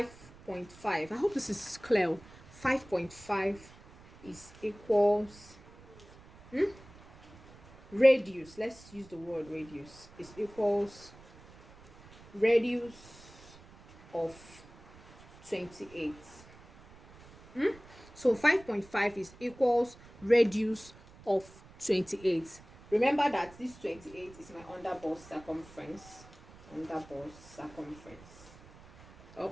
I hope this is clear. 5.5 is equals radius. Let's use the word radius. Is equals radius of 28. So 5.5 is equals radius of 28. Remember that this 28 is my underbust circumference.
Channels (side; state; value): right; noise; rumble, 22 dB below the sound